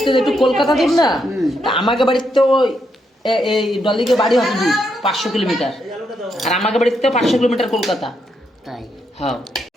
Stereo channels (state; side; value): normal; both; correlation 0.79